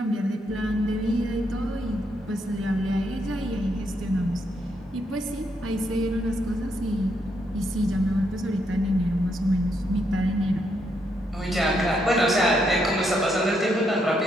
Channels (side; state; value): both; normal; correlation 0.77